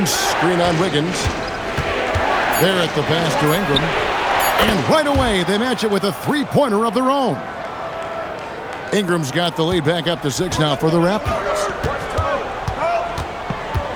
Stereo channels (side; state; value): both; identical; correlation 1.00